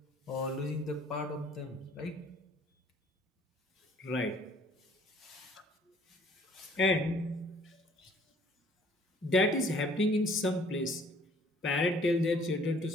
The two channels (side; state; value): both; normal; correlation 0.57